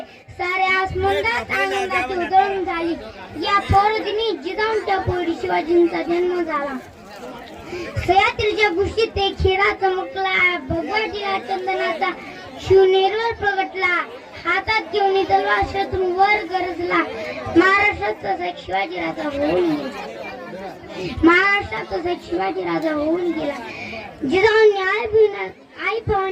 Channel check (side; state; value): both; identical; correlation 1.00